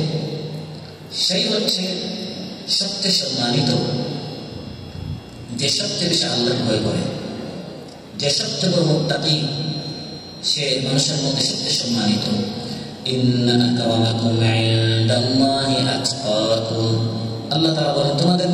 সেই হচ্ছে সবচেয়ে সম্মানিত, যে সবচেয়ে বেশি আল্লাহকে ভয় করে, যে সবচেয়ে বড় মুত্তাকি, সে মানুষের মধ্যে সবচেয়ে সম্মানিত। ইন্না আকরামাকুম ইনদাল্লাহি আতকাকুম। আল্লাহ তাআলা বলেন, তোমাদের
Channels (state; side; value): identical; both; correlation 1.00